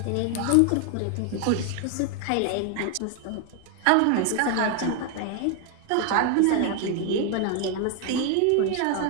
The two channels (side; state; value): both; different; correlation 0.01